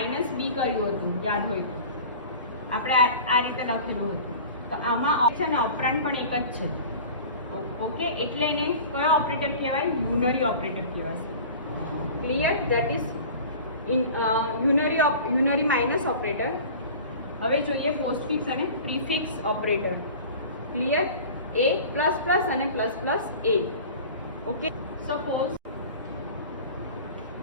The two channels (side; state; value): both; inverted; correlation -0.39